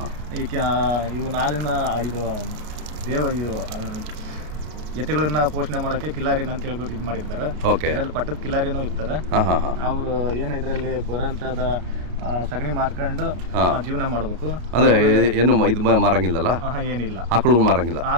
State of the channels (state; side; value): late; left; 34 ms